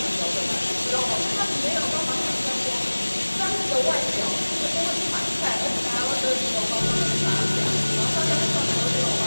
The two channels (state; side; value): inverted; both; correlation -1.00